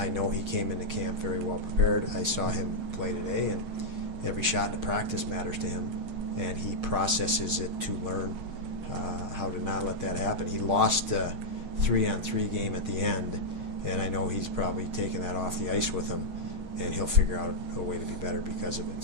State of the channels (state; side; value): late; left; 6.5 ms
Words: know he came into camp very well prepared. I saw him play today, and every shot in the practice matters to him, and he processes it to learn how to not let that happen. He lost a 3-on-3 game at the end, and I know he's probably taken that off the ice with him, and he'll figure out a way to be better because of it.